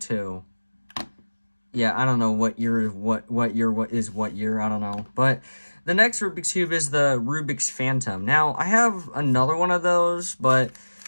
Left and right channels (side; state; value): both; inverted; correlation -1.00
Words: Yeah, I don't know what year, what year, I don't know. But the next Rubik's Cube is the Rubik's Phantom. Now, I have another one of those, but